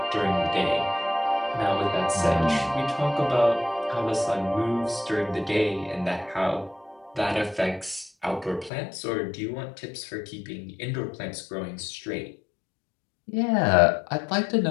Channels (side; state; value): right; drops out; at 8.7 s